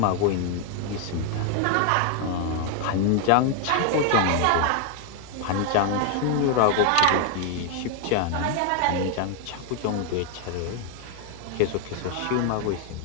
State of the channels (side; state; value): both; different; correlation 0.01